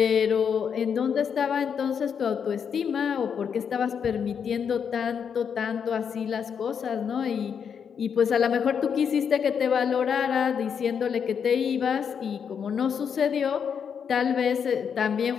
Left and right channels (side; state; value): right; quieter; 7.2 dB